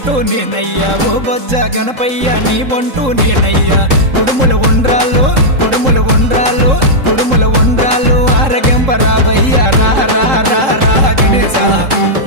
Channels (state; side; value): late; left; 3.7 ms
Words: నేనయ్యా ఓ బొజ్జ గణపయ్య నీ బంటు నేనయ్యా కుడుముల ఉండ్రాళ్ళు కుడుముల ఉండ్రాళ్ళు కుడుముల ఉండ్రాళ్ళు ఆరగింపరాబయ్య రా రా రా రా గణేశ